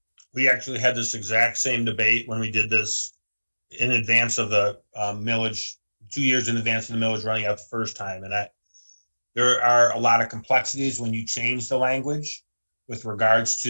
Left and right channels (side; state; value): both; inverted; correlation -1.00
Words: We actually had this exact same debate when we did this in advance of the millage, 2 years in advance of the millage running out the first time. And there are a lot of complexities when you change the language with regards